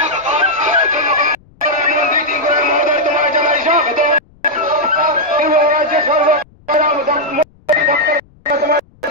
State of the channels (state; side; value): noise; left; rumble, 29 dB below the sound